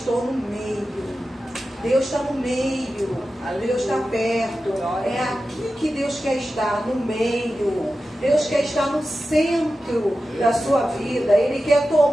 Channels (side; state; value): both; normal; correlation 0.93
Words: no meio. Deus está no meio, Deus está perto. É aqui que Deus quer estar, no meio. Deus quer estar no centro da sua vida. Ele quer